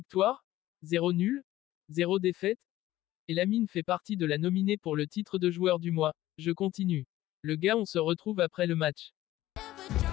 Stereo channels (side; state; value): right; quieter; 15.3 dB